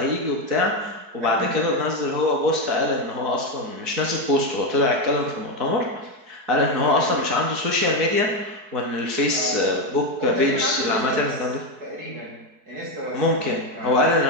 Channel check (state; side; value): late; left; 4.6 ms